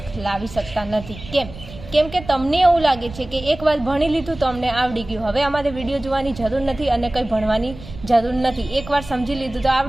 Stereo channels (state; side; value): noise; right; rumble, 15 dB below the sound